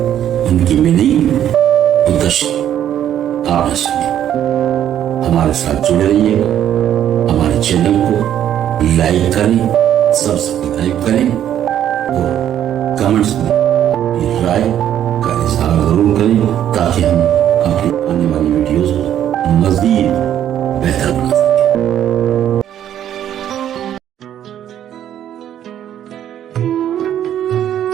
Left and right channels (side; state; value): left; quieter; 10.7 dB